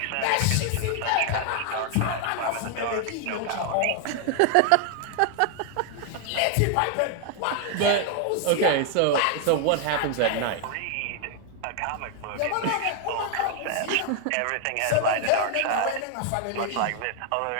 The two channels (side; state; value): both; different; correlation 0.00